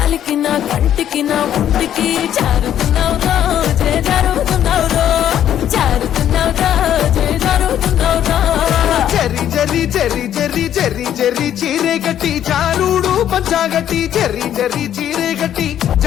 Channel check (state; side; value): quieter; right; 10.6 dB